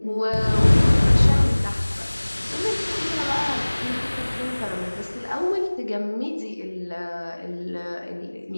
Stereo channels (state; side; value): inverted; both; correlation -1.00